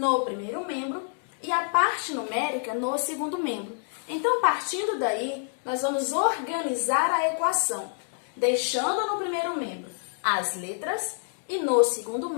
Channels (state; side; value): silent; right; digital silence